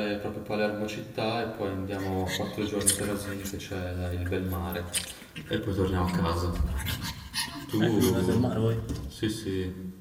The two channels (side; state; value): both; identical; correlation 1.00